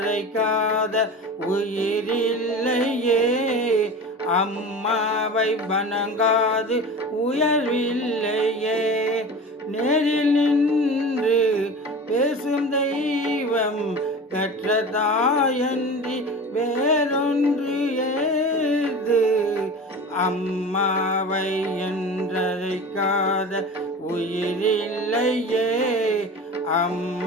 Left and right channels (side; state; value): both; normal; correlation 0.33